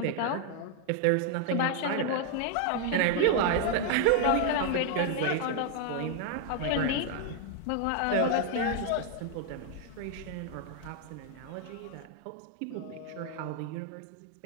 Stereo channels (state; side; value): different; both; correlation 0.00